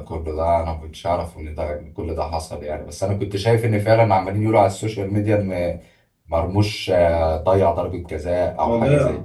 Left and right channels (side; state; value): both; identical; correlation 1.00